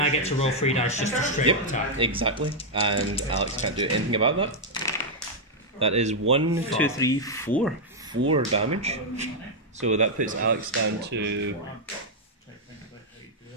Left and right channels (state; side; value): normal; both; correlation -0.03